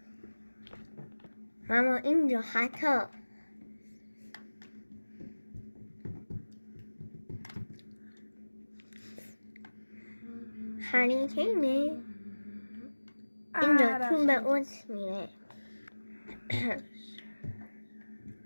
اما اینجا خطا. هری کینه اینجا تو به اوت میره.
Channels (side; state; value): both; inverted; correlation -1.00